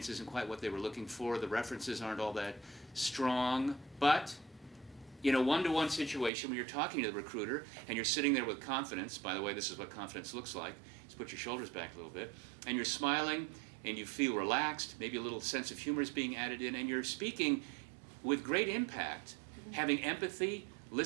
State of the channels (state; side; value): drops out; left; at 6.3 s